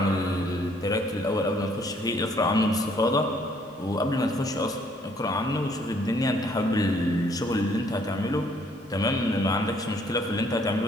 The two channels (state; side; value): normal; both; correlation 0.64